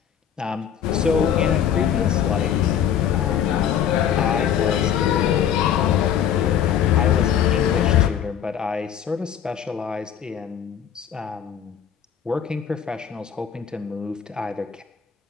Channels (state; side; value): quieter; right; 9.0 dB